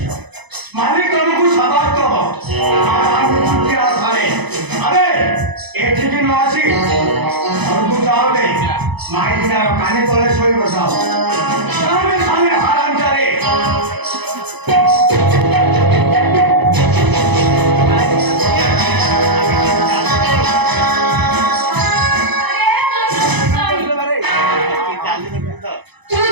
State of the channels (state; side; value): late; left; 0.99 ms